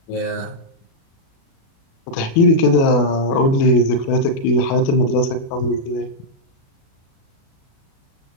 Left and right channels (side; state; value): right; late; 36 ms